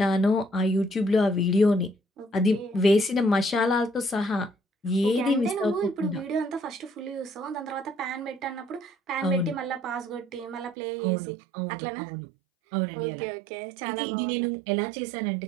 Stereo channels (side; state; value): left; drops out; at 10.8 s